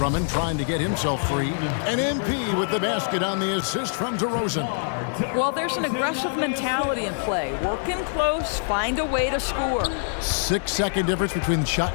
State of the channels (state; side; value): silent; right; digital silence